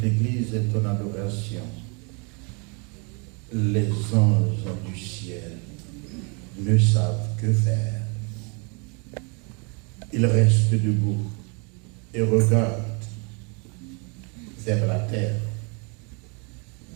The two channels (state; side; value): quieter; left; 33.9 dB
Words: l'Église est en adoration, les anges du ciel ne savent que faire. Ils restent debout et regardent vers la terre.